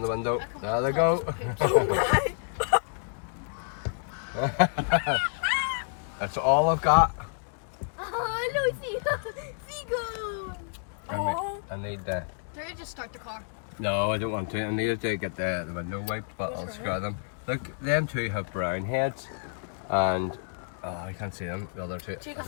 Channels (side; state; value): right; silent; digital silence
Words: the window. There they go. That's all I've got. Oh, no, seagull. I need the. Do you just start the car? No, I don't want to. I need to get the window wiped, but I'll screw them. Look, them two have brown heads, and I can't see them. The other two. The